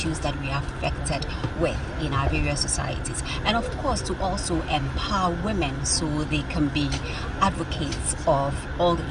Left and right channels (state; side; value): identical; both; correlation 1.00